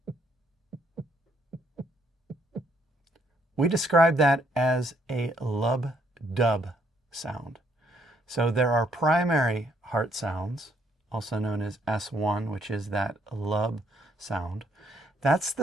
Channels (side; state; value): both; normal; correlation 0.70